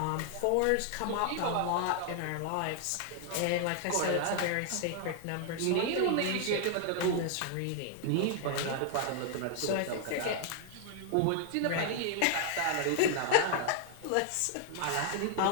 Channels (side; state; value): both; different; correlation 0.00